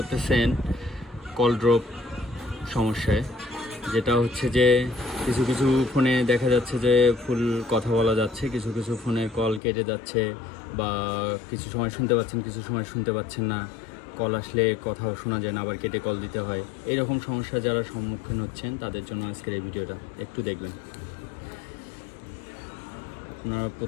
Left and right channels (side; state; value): right; drops out; at 9.6 s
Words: কল ড্রপ সমস্যায়। যেটা হচ্ছে যে কিছু কিছু ফোনে দেখা যাচ্ছে যে ফুল কথা বলা যাচ্ছে, কিছু কিছু ফোনের কল কেটে যাচ্ছে, বা কিছু সময় শুনতে পাচ্ছেন, কিছু সময় শুনতে পাচ্ছেন না। কল আসলে কথাও শোনা যায় না, আবার কেটে কল দিতে হয়। এইরকম সমস্যা যারা সম্মুখীন হচ্ছেন তাদের জন্য আজকের এই ভিডিওটা একটু দেখবেন। আপনারা